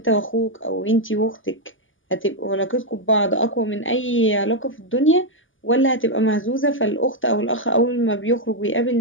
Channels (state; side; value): late; right; 0.57 ms